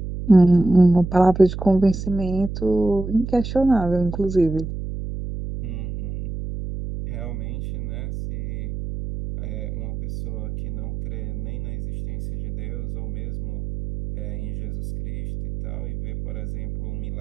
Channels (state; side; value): noise; right; hum, 6 dB below the sound